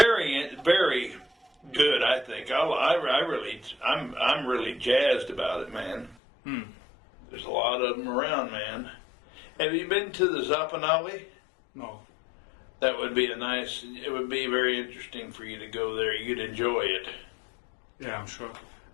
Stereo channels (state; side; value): drops out; right; at 6.2 s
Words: good. I think I'm really jazzed about it, man. There's a lot of them around, man. Have you been to the Zappanale? No. That would be it would be very interesting for you to go there. You'd enjoy it. Yeah, I'm sure.